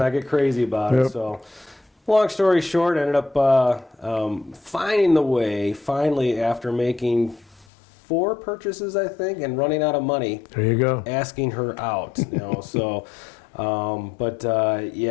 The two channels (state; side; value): drops out; right; at 7.7 s